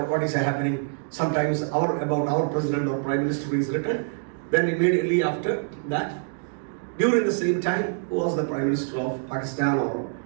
is happening? Sometimes about our president or prime minister is written. Then immediately after that, during the same time, who was the prime minister of Pakistan or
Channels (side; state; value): left; silent; digital silence